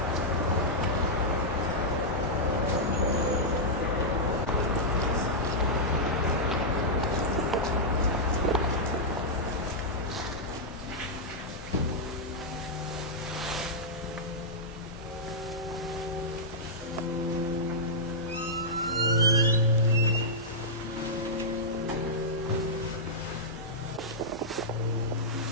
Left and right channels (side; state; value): both; normal; correlation -0.09